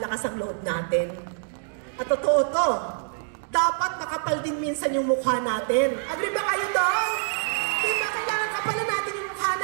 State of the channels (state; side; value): silent; left; digital silence